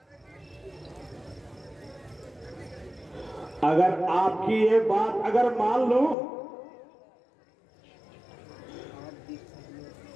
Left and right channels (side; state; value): right; drops out; at 6.2 s